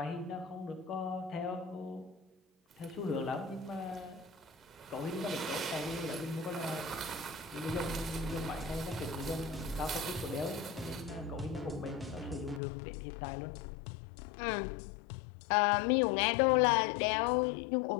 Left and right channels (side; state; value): right; drops out; at 12.6 s